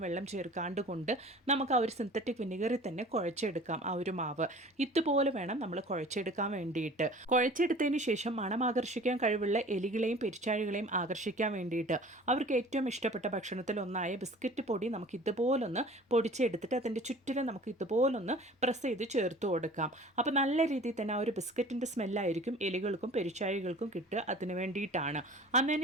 വെള്ളം ചേർക്കാണ്ട് കൊണ്ട് നമുക്ക് ആ ഒരു സിന്തറ്റിക് വിനെഗറിൽ തന്നെ കുഴച്ചെടുക്കാം. ഒരു മാവ് ഇതുപോലെ വേണം നമ്മൾ കുഴച്ചെടുക്കാൻ വേണ്ടിയിട്ട്. കുഴച്ചെടുത്തതിന് ശേഷം മണം ആകർഷിക്കാൻ കഴിവുള്ള എലികളെയും പെരിച്ചാഴികളെയും ആകർഷിക്കാൻ വേണ്ടിയിട്ട് അവർക്ക് ഏറ്റവും ഇഷ്ടപ്പെട്ട ഭക്ഷണത്തിൽ ഒന്നായ ബിസ്ക്കറ്റ് പൊടി നമുക്ക് ഇതുപോലൊന്ന് പൊടിച്ചെടുത്തിട്ട് അതിൻ്റെ ചുറ്റിലും നമുക്ക് ഇതുപോലൊന്ന് പ്രസ് ചെയ്ത് ചേർത്ത് കൊടുക്കാം. അപ്പോൾ നല്ല രീതിയിൽ തന്നെ ആ ഒരു ബിസ്ക്കറ്റിൻ്റെ സ്മെല്ലായിരിക്കും എലികൾക്കും പെരിച്ചാഴികൾക്കും കിട്ടുക. അതിന് വേണ്ടിയിട്ടാണ്.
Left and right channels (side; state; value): both; normal; correlation 0.45